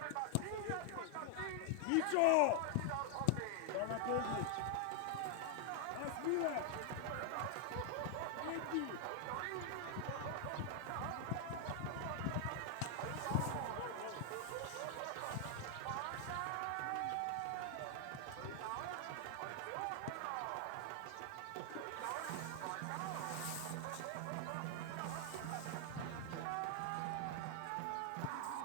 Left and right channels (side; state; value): both; different; correlation 0.00